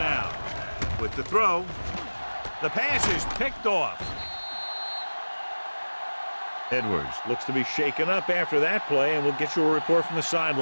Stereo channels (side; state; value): both; inverted; correlation -1.00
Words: With the throw, the pass is picked off. Edwards looks to be shaken up after that play, and we'll get you a report from the